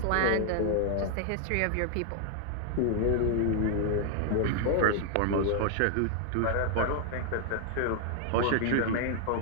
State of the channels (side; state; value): both; different; correlation 0.00